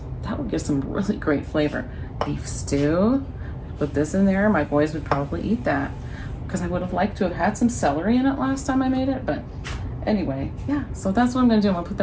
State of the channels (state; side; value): identical; both; correlation 1.00